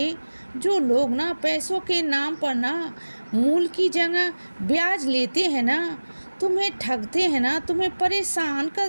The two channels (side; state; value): both; inverted; correlation -1.00